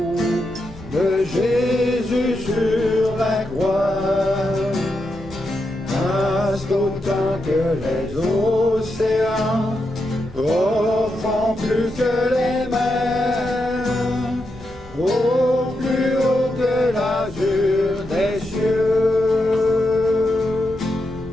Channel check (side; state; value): both; normal; correlation 0.85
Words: de Jésus sur la croix. Vaste autant que les océans, profond plus que les mers, au plus haut que l'azur des cieux,